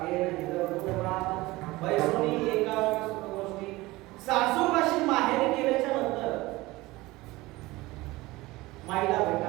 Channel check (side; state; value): left; quieter; 20.1 dB